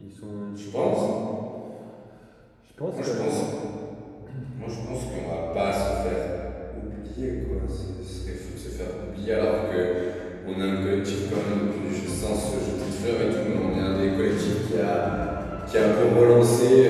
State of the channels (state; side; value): identical; both; correlation 1.00